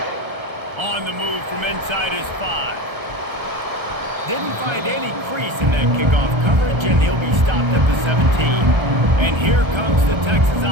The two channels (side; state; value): left; late; 1.3 ms